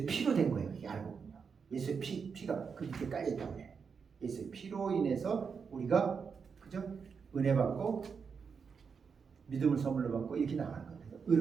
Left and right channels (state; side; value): quieter; left; 5.9 dB